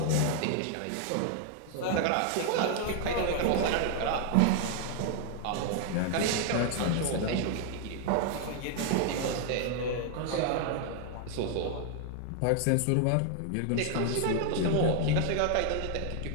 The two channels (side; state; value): both; different; correlation 0.01